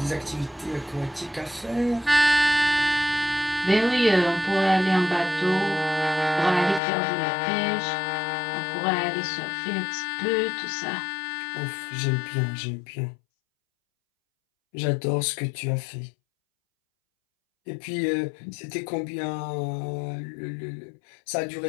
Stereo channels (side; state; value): right; drops out; at 6.8 s